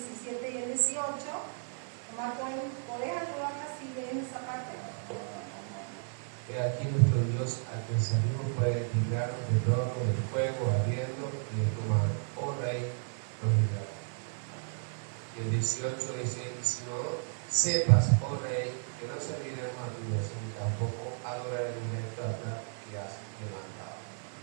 y el 18, nomás podés ayudarme si ven esa parte. He aquí nuestro Dios, a quien servimos, puede librarnos del horno del fuego ardiendo y del comando. Oh Rey, nos librará. Y el 18 dice, si no sepas, oh Rey,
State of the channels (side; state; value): left; silent; 56 dB below the other